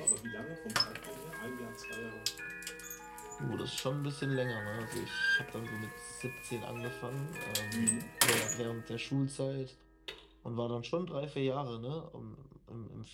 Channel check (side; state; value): both; identical; correlation 1.00